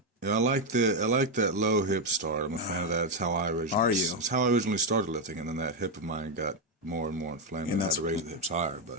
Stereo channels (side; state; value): both; normal; correlation 0.05